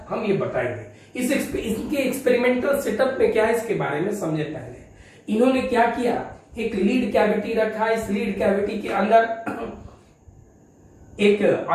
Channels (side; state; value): both; identical; correlation 1.00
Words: हम ये बताएंगे। इनके एक्सपेरिमेंटल सेटअप में क्या है इसके बारे में समझे। पहले इन्होंने क्या किया, एक लीड कैविटी रखा। इस लीड कैविटी के अंदर एक